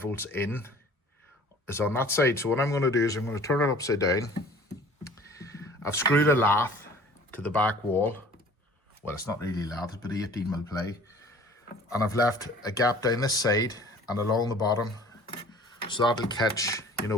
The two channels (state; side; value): normal; both; correlation 0.49